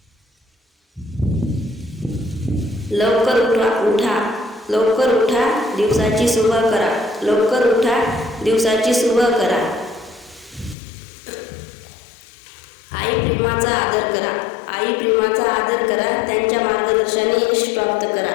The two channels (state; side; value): drops out; right; at 10.8 s